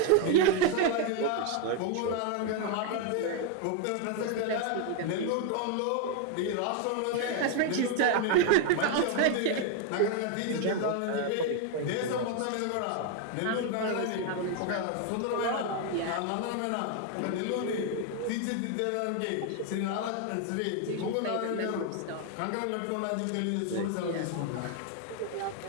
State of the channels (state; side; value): different; both; correlation 0.01